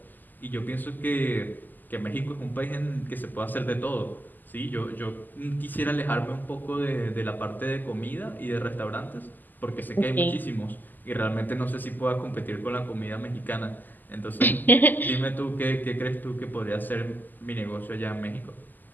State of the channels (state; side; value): late; right; 0.087 ms